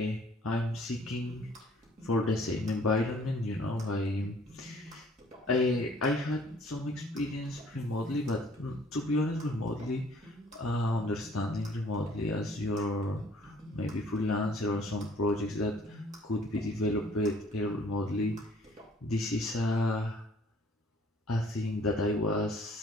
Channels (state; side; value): normal; both; correlation 0.57